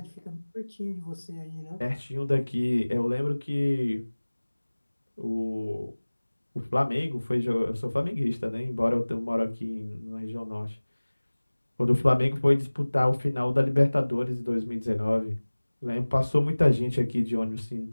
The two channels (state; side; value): inverted; both; correlation -1.00